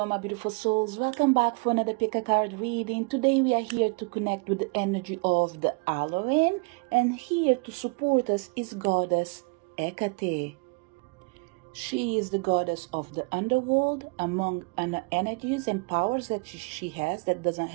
my beautiful souls. Welcome back for another pick a card reading. Today we are here to connect with the energy of the Halloween, and here to support us is Goddess Hecate. She is the goddess of the underworld, among energies and powers that she has that doesn't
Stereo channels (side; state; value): left; quieter; 30.6 dB